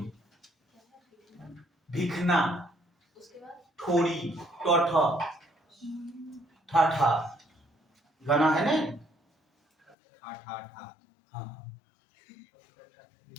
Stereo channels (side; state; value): right; drops out; at 10.0 s